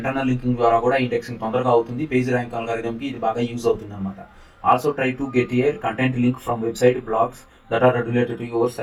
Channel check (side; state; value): both; identical; correlation 1.00